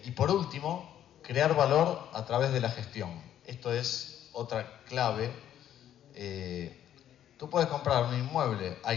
por último, crear valor a través de la gestión. Esto es otra clave. Tú puedes comprar un inmueble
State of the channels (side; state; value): right; quieter; 10.9 dB